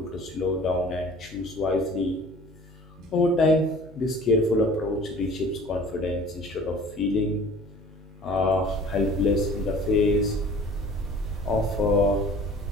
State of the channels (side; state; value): both; normal; correlation 0.47